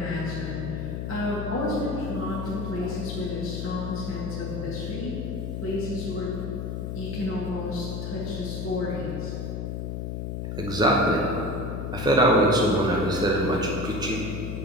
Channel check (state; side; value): noise; left; hum, 3 dB below the sound